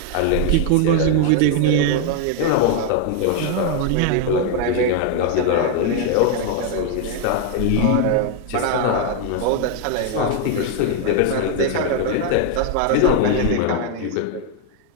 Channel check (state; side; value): different; both; correlation 0.00